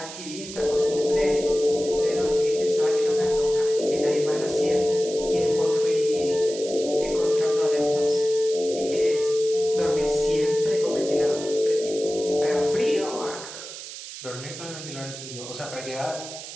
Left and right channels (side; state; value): right; noise; hiss, 12 dB below the sound